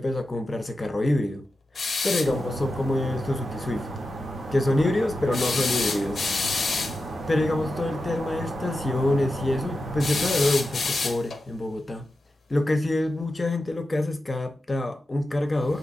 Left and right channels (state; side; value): normal; both; correlation 0.91